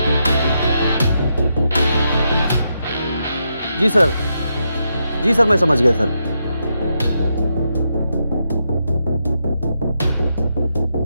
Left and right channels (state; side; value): inverted; both; correlation -0.83